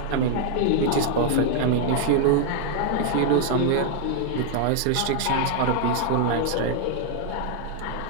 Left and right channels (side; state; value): both; different; correlation 0.00